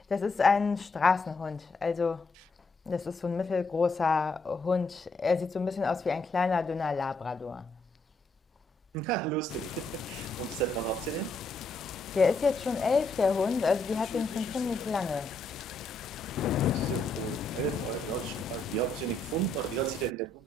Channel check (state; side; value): quieter; right; 3.0 dB